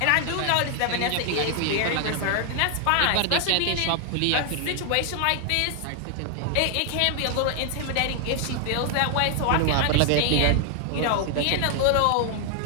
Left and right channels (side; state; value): both; different; correlation 0.00